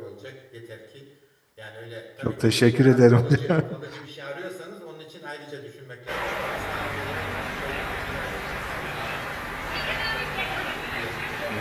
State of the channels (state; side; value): identical; both; correlation 1.00